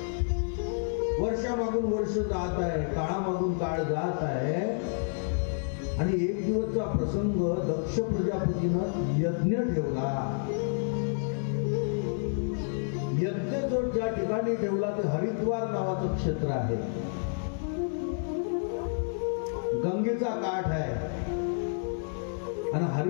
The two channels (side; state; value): right; silent; digital silence